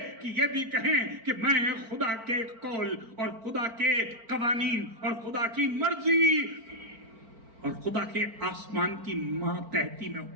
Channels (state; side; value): late; left; 4.4 ms